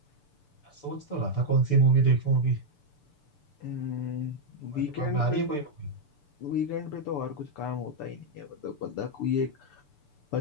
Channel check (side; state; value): right; late; 6.9 ms